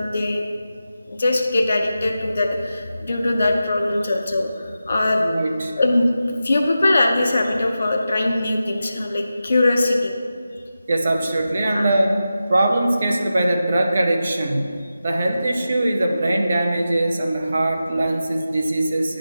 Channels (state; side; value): inverted; both; correlation -0.92